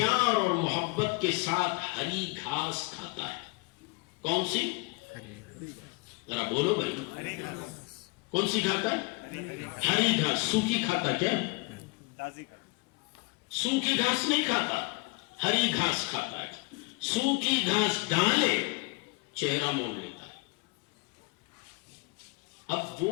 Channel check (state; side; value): quieter; right; 27.9 dB